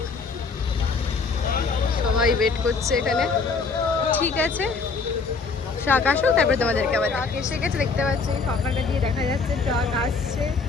সবাই ওয়েট করছে এখানে। ঠিক আছে, ট্রাক আসুক তারপরে তোমাদেরকে আবার ট্রাক এসে গেছে, দেখতে পাচ্ছি ফাঁকাটা দিয়ে দেখা যাচ্ছে ট্রাক আসছে।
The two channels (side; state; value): right; quieter; 4.5 dB